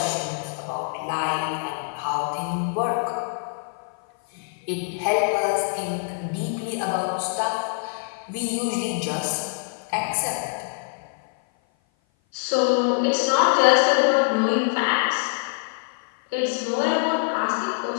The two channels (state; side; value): silent; right; 56 dB below the other